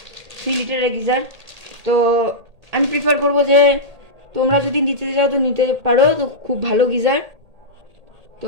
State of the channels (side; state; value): left; late; 1.8 ms